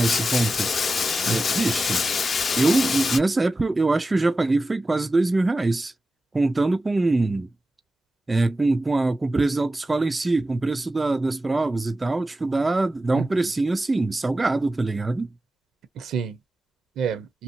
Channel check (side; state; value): both; normal; correlation 0.93